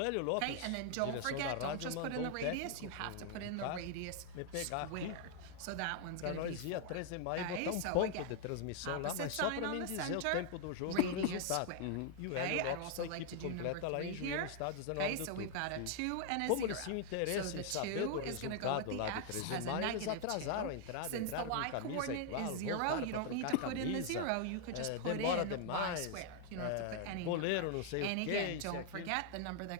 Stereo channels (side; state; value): both; different; correlation 0.00